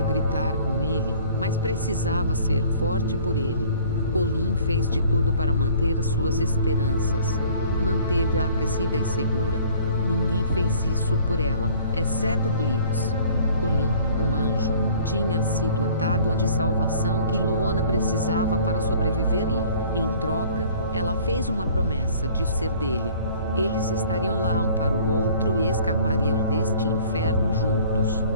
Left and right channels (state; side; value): inverted; both; correlation -0.52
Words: gritar com ele, mas precisava ser forte por ele. Colin fez de tudo para manter suas esperanças. Manteve-a aquecida e segura. Ninguém fez isso por ela, exceto Blitz. Colin, um anjo, tinha sido a tábua de salvação que Loana precisava para sobreviver e, em troca, ela fez uma promessa de ser dele. Eles estariam lá um para o outro e escapariam deste inferno juntos.